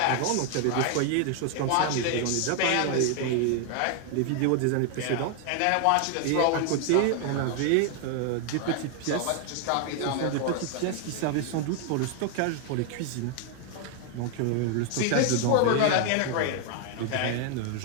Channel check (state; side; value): different; both; correlation 0.00